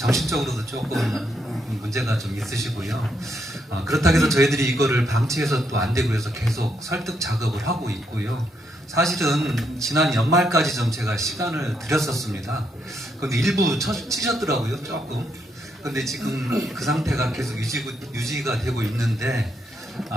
조금 문제가 좀 있으시고요. 그렇다고 해서 저희들이 이거를 방치해서 또 안 되고 해서 계속 설득 작업을 하고 있고요. 사실은 지난 연말까지 좀 제가 시간을 드렸었습니다. 근데 일부 치셨더라고요, 조금. 근데 지금 그 상태가 계속 유지가 되고 있는데,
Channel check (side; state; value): both; normal; correlation 0.77